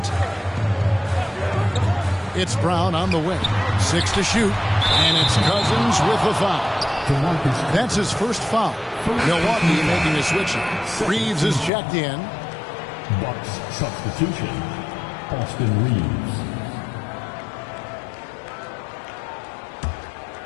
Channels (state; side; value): drops out; right; at 11.7 s